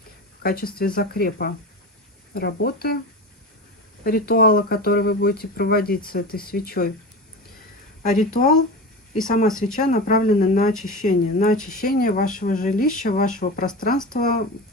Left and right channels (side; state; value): both; normal; correlation 0.27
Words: в качестве закрепа работы ритуала, который вы будете проводить с этой свечой. А ритуал и сама свеча направлены на очищение вашего жилища, вашего пространства,